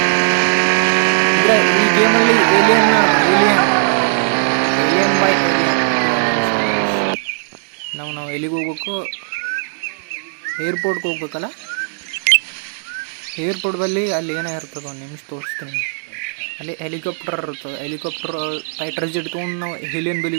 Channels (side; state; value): left; silent; digital silence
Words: ಈ ಗೇಮಲ್ಲಿ ಏಲಿಯನ್ ಬೈ ಏಲಿಯನ್. ನಾವು ಎಲ್ಲಿಗೆ ಹೋಗ್ಬೇಕು? ಏರ್ಪೋರ್ಟ್ಗೆ ಹೋಗ್ಬೇಕಲ್ಲ. ಏರ್ಪೋರ್ಟ್ ಬಲ್ಲಿ ಅಲ್ಲಿ ಏನೋ ಇರ್ತದೆ, ಒಂದು ನಿಮಿಷ ತೋರಿಸ್ತೀನಿ. ಅಲ್ಲಿ ಹೆಲಿಕಾಪ್ಟರ್ ಇರ್ತದೆ. ಹೆಲಿಕಾಪ್ಟರ್ ಫೈಟರ್ ಜೆಟ್ ತೊಗೊಂಡು ನಾವು ಏಲಿಯನ್